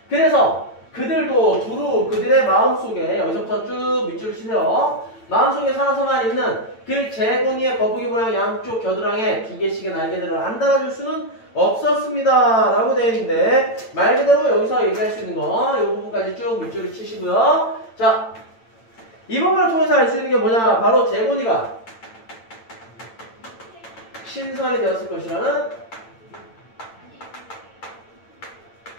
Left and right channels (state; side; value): late; right; 8.9 ms